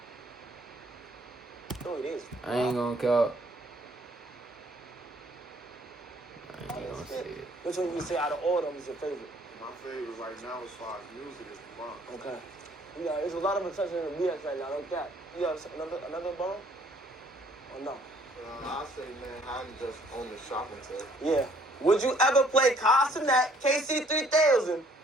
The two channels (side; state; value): both; normal; correlation 0.61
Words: No, it is. I ain't gonna count. I ain't gonna say it. Which one you say out of all of them is your favorite? My favorite right now as far as music is the Bronx. Okay. Yeah, there's a lot of attention in the BX right now. No cap. You got another borough? Or no? I say, man, I'm just on the shopping tip. Yeah. Would you ever play Castanet KC3000